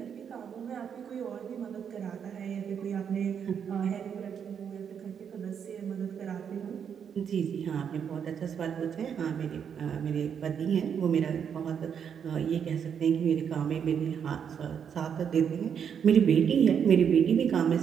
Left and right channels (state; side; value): quieter; left; 7.7 dB